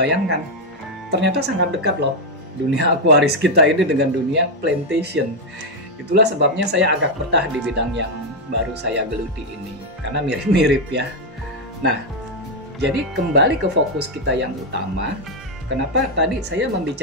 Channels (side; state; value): both; normal; correlation 0.02